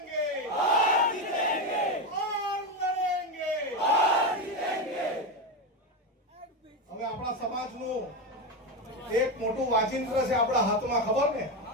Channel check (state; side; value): normal; both; correlation 0.14